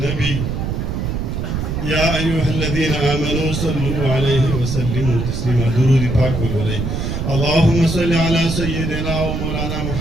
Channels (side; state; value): right; noise; rumble, 2 dB below the sound